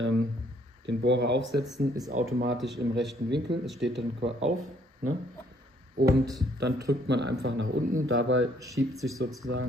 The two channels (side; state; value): both; normal; correlation 0.65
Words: Bohrer aufsetzen, ist automatisch im rechten Winkel, es steht dann auf, ne? Und dann drückt man einfach nach unten, dabei schiebt sich